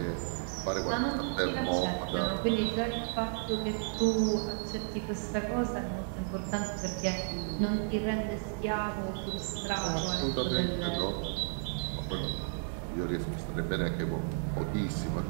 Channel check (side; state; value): left; silent; 56 dB below the other